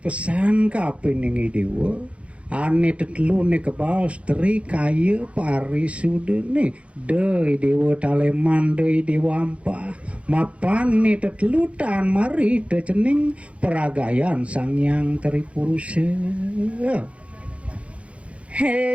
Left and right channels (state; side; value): late; left; 0.062 ms